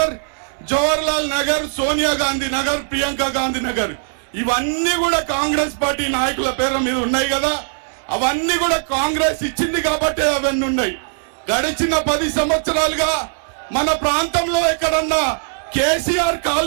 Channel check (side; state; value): left; silent; 58 dB below the other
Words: జవహర్లాల్ నగర్, సోనియా గాంధీ నగర్, ప్రియాంక గాంధీ నగర్, ఇవన్నీ కూడా కాంగ్రెస్ పార్టీ నాయకుల పేర్ల మీద ఉన్నాయి కదా. అవన్నీ కూడా కాంగ్రెస్ ఇచ్చింది కాబట్టి అవన్నీ ఉన్నాయి. గడిచిన 10 సంవత్సరాలుగా మన ప్రాంతంలో ఎక్కడన్నా కేసీఆర్